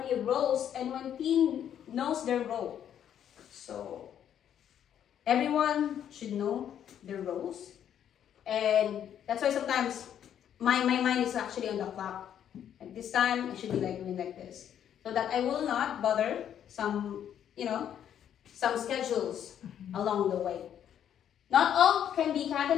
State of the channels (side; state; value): right; quieter; 9.7 dB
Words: roles and when team knows their role. So everyone should know their roles. And that's why sometimes my mind is actually on the clock. At this time, I should be like doing like this. So that I will not bother some schedules along the way. Not all can be